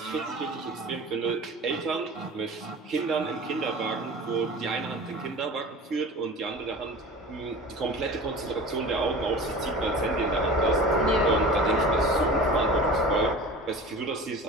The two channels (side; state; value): both; normal; correlation 0.37